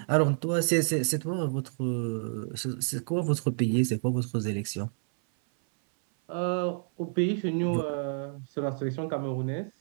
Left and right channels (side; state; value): left; silent; 59 dB below the other